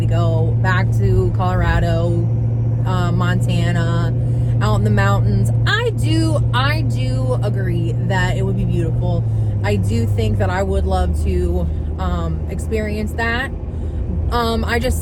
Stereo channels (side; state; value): both; identical; correlation 1.00